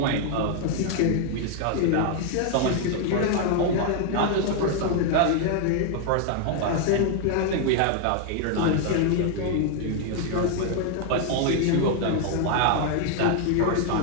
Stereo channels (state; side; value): different; both; correlation 0.00